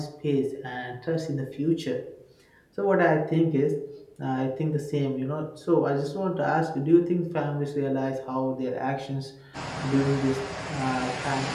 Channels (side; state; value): both; identical; correlation 1.00